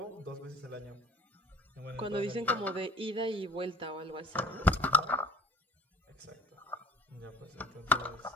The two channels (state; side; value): normal; both; correlation 0.45